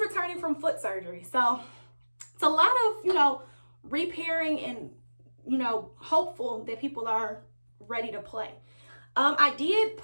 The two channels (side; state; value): both; inverted; correlation -1.00